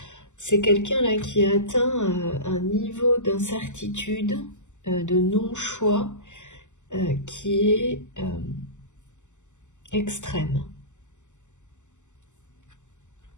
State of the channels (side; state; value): right; late; 0.84 ms